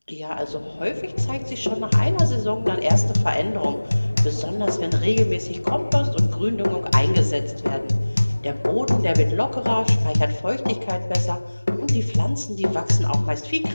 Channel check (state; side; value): inverted; both; correlation -1.00